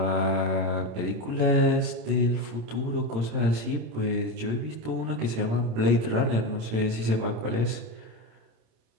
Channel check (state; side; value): late; left; 27 ms